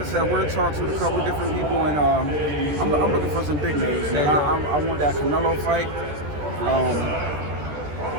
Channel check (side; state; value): left; late; 13 ms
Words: said, we're in talks with a couple of different people, and I'm looking for some big names. And I want that Canelo fight.